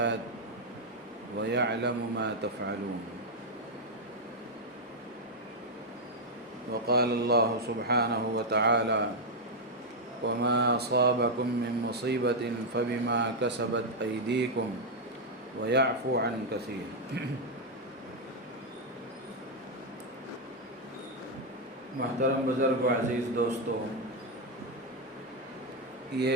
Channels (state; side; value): normal; both; correlation 0.00